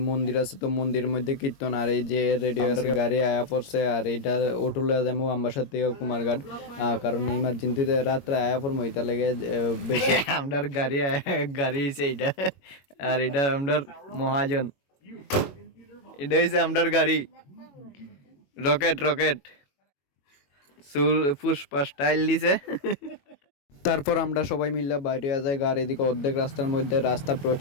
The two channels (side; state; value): right; late; 21 ms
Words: মন্দির আছে, তো মন্দিরের মধ্যে কীর্তন, আর এই যে রেডিও গাড়ি আয়া পড়ছে, আর এইটা অটুলে যাবো আমবাসার থেকে কুমারঘাট। কারণ ইমার্জেন্সিতে রাত্রে আয়া পড়বো, এটা লেগে বেশি আমার গাড়ি হয়েছে এইটা। আর এটা আমার মহাজন, এটা হচ্ছে আমার গাড়ি রকেট রকেট চুল পুষ্পা স্টাইল দিছে। তারপর আমরা সবাই মিলে বাইরে যাই। গাড়ি দিকে অর্ধেক রাস্তার মধ্যে রাস্তা